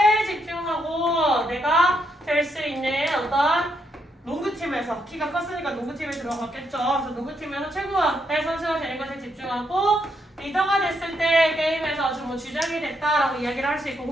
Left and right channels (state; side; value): normal; both; correlation 0.78